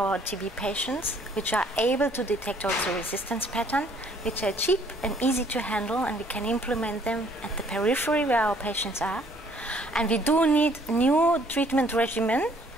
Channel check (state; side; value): normal; both; correlation 0.61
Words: TB patients, which are able to detect also resistance pattern, which are cheap and easy to handle, and we can implement them at the periphery where our patients are. And we do need new treatment regimen